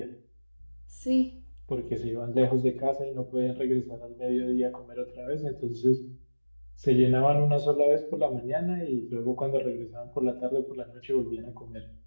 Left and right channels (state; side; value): inverted; both; correlation -1.00